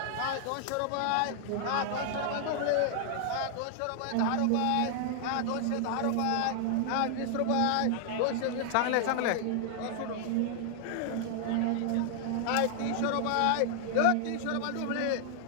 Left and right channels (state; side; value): different; both; correlation 0.00